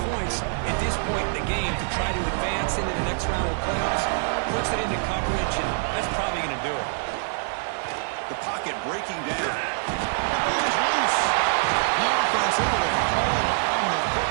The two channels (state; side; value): silent; left; digital silence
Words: points at this point in the game to try to advance into the next round of the playoffs. Puts it into coverage, and that's probably going to do it. The pocket breaking down. Who's loose? The offense able to fall on the